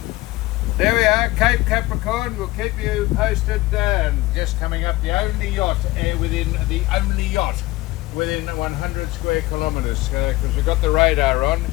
There we are, Cape Capricorn. We'll keep you posted. Just coming up, the only yacht within 100 square kilometres, because we've got the radar on,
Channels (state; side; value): quieter; right; 18.8 dB